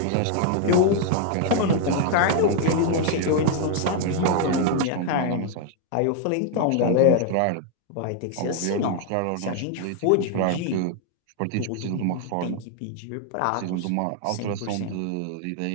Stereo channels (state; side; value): different; both; correlation 0.00